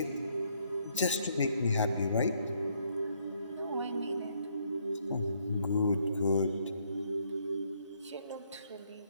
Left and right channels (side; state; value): both; inverted; correlation -0.71